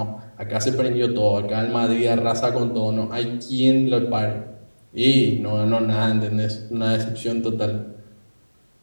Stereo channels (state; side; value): inverted; both; correlation -1.00